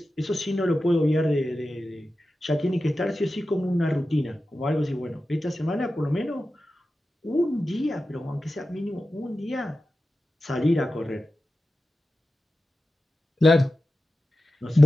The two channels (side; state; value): both; normal; correlation 0.92